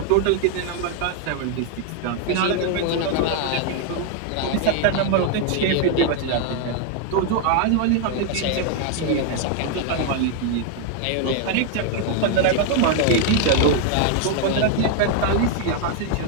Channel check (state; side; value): different; both; correlation 0.00